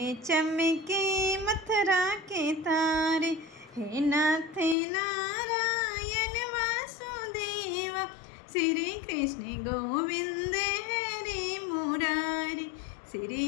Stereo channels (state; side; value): drops out; right; at 4.8 s